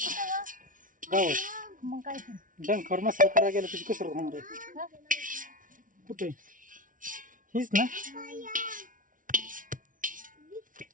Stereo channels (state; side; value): late; left; 0.38 ms